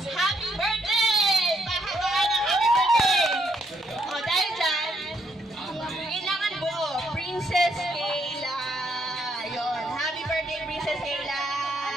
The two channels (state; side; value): normal; both; correlation 0.74